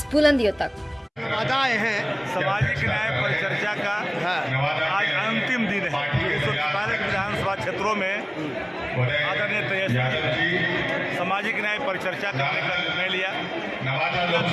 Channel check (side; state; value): both; identical; correlation 1.00